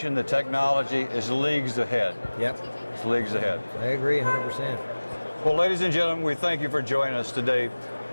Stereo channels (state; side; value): inverted; both; correlation -1.00